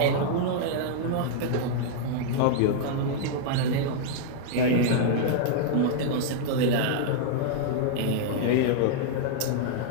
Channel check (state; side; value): different; both; correlation -0.01